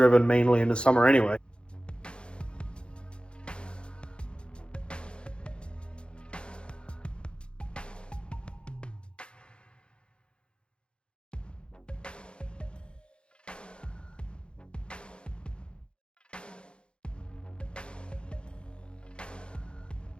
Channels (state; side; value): late; right; 0.055 ms